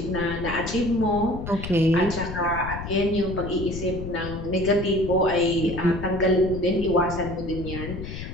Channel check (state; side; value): noise; left; rumble, 8 dB below the sound